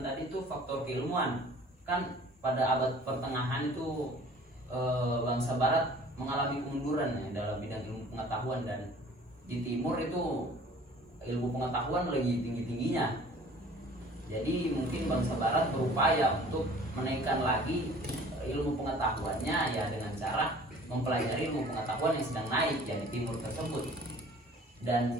tadi itu faktor keilmuan. Kan pada abad pertengahan itu bangsa barat mengalami kemunduran ya, dalam bidang ilmu pengetahuan, dan di timur itu ilmu pengetahuan lagi tinggi-tingginya. Jadi mungkin bangsa barat berupaya untuk menaikkan lagi ilmu pengetahuannya ya dengan cara mempelajari ilmu pengetahuan yang sedang naik ya di timur tersebut.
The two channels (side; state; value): both; normal; correlation 0.49